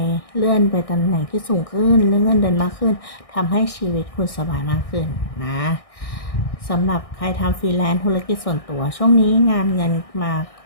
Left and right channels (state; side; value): late; right; 1.6 ms